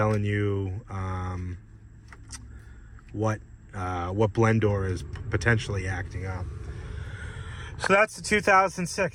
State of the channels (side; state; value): both; identical; correlation 1.00